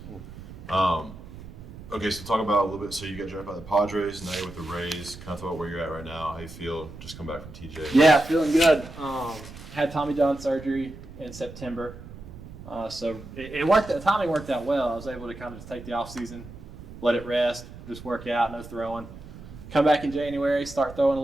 Okay, so talk about a little bit. So you got drafted by the Padres, now you're with the Rays. Kind of talk about where you're at right now, how you feel. Just come back from TJ. Yeah, feeling good. Had Tommy John surgery in September. So it worked. The timing worked out well. I was able to kind of just take the off season, let it rest, just work out, no throwing. Come back in January, start throwing a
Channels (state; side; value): noise; right; rumble, 15 dB below the sound